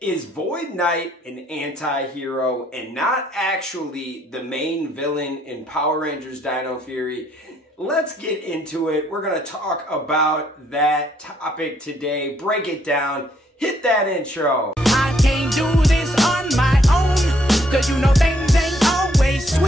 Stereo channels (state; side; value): normal; both; correlation 0.69